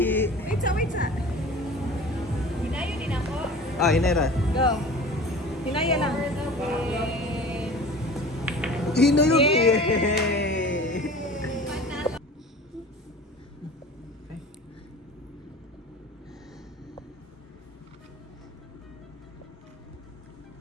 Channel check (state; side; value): normal; both; correlation 0.40